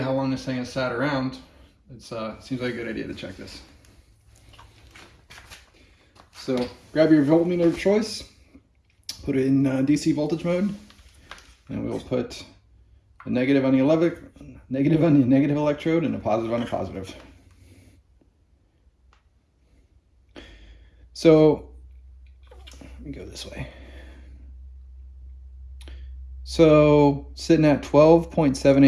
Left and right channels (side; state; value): both; identical; correlation 1.00